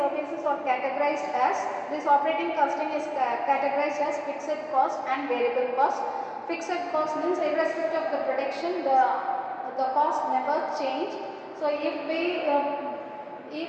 are categorized as, this operating costing is categorized as fixed cost and variable cost. Fixed cost means irrespective of the production, the cost never change. So if we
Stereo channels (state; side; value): identical; both; correlation 1.00